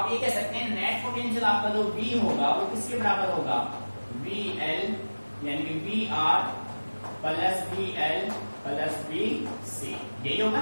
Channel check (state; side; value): inverted; both; correlation -1.00